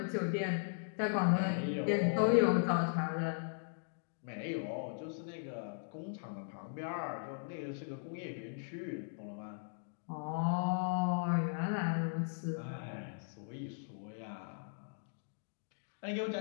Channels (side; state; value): right; silent; digital silence